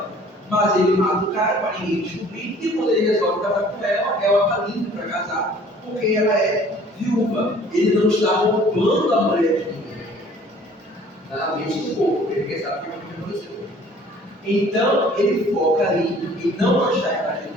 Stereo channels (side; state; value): both; normal; correlation 0.53